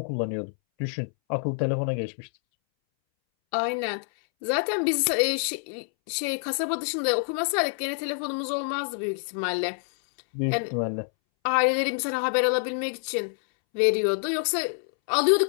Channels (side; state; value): right; silent; 61 dB below the other